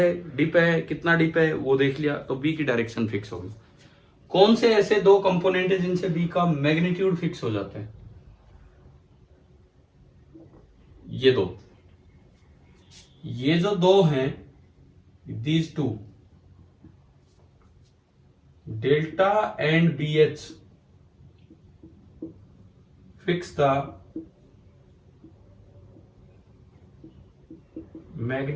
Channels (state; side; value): identical; both; correlation 1.00